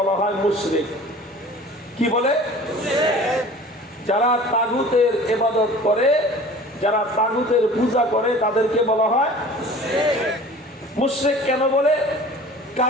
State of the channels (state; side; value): normal; both; correlation 0.44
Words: হয় মুশরিক। কি বলে? যারা তাগুতের ইবাদত করে, যারা তাগুতের পূজা করে তাদেরকে বলা হয় মুশরিক। কেন বলে?